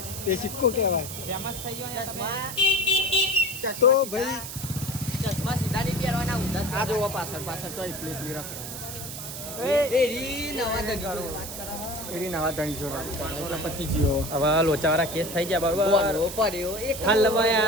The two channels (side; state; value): right; noise; hiss, 8 dB below the sound